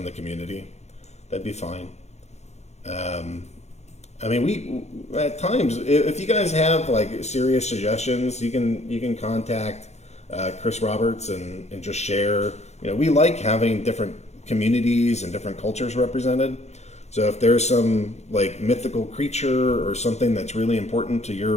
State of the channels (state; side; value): late; right; 0.32 ms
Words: the community. That'd be fine. I mean, we at times, if you guys have like serious suggestions, you can contact Chris Roberts and just share. You know, we like having different communities and different cultures represented. So if there's some like mythical creature or something that's really important to